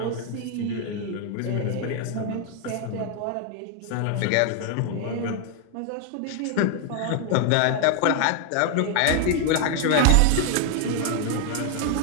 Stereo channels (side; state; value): both; different; correlation 0.00